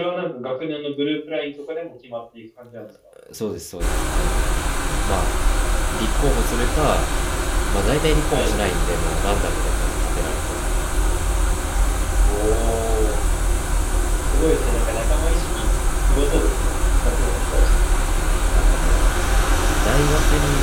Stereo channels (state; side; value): identical; both; correlation 1.00